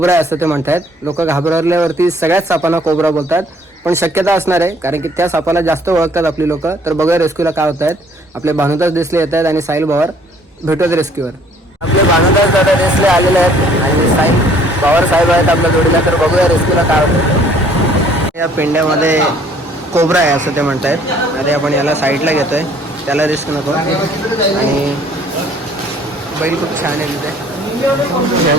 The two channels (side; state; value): both; normal; correlation 0.59